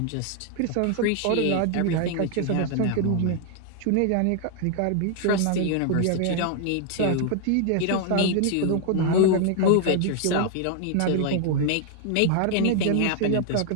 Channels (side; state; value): both; different; correlation 0.00